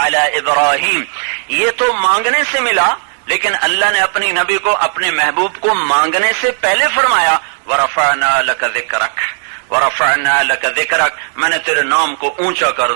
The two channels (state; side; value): silent; left; digital silence